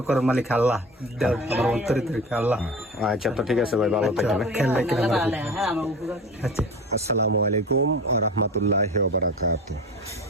করার মালিক আল্লাহ, আমার অন্তরে থেকে আল্লাহ। আচ্ছা, তো ঠিক আছে ভাই, ভালো থাকেন। আচ্ছা, আসসালামু আলাইকুম ওয়া রাহমাতুল্লাহি ওয়া বারাকাতুহু।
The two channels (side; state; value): both; normal; correlation 0.34